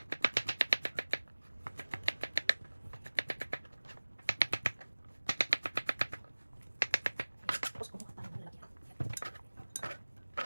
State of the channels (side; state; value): both; inverted; correlation -1.00